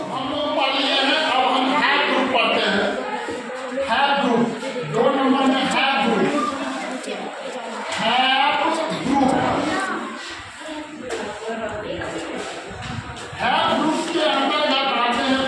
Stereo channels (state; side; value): identical; both; correlation 1.00